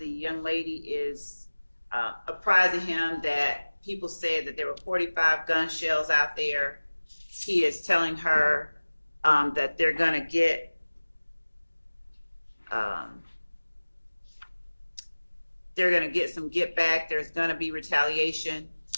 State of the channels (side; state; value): both; inverted; correlation -1.00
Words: young lady is apprising him that people said that there were 45 gun shells out there. He is telling her that they're going to get some get back. There's going to be retaliation.